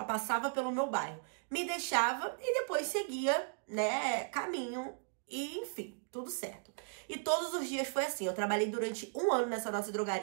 passava pelo meu bairro, me deixava e depois seguia, né, caminho. E, enfim, tudo certo. E todos os dias foi assim. Eu trabalhei durante 1 ano nessa nossa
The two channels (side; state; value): left; silent; digital silence